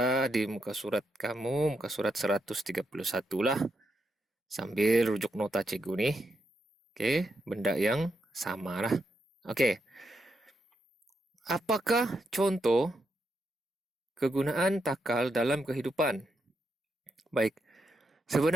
di muka surat kamu, muka surat 131 lah, sambil rujuk nota cikgu nih. Oke, benda yang sama lah. Oke, apakah contoh kegunaan takal dalam kehidupan? Baik,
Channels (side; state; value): both; normal; correlation 0.82